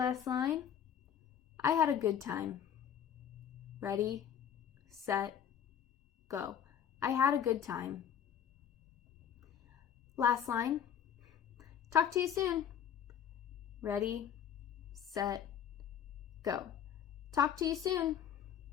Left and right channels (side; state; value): right; quieter; 9.1 dB